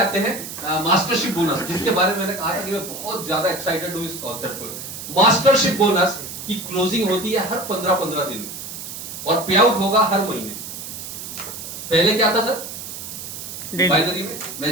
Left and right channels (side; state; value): right; noise; hiss, 9 dB below the sound